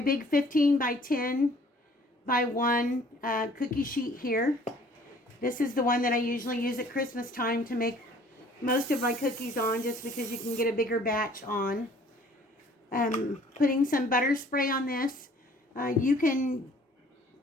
big 15 by 10 by 1 cookie sheet here. This is the one that I usually use at Christmas time to make most of my cookies on, just because you can get a bigger batch on. Putting some butter spray on this. You can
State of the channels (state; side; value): normal; both; correlation 0.55